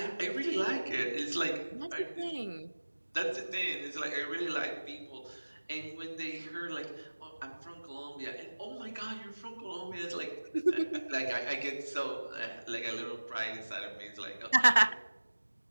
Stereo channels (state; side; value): inverted; both; correlation -1.00